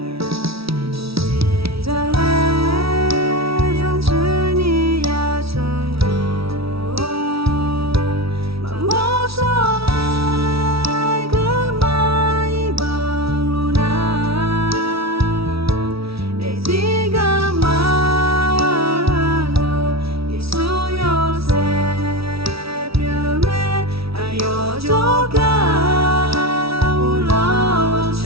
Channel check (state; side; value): late; left; 0.76 ms